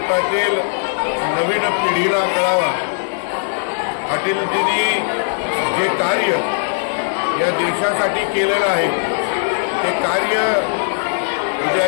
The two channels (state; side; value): silent; right; 67 dB below the other